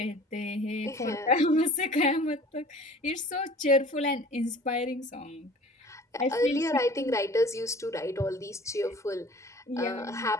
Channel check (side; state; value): both; normal; correlation 0.46